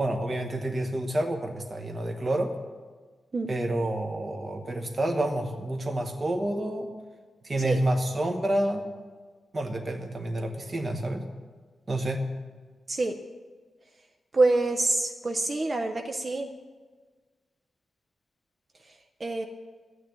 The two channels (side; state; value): both; normal; correlation 0.93